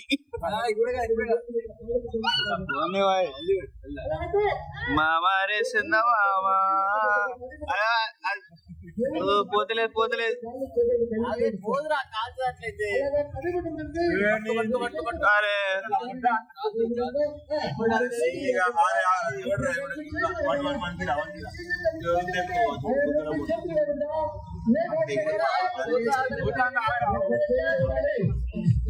మామారే చిన్న మామా పోతలేదు పోతలేదు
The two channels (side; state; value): both; identical; correlation 1.00